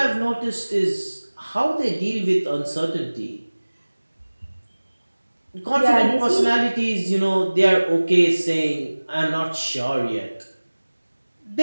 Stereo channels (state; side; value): inverted; both; correlation -1.00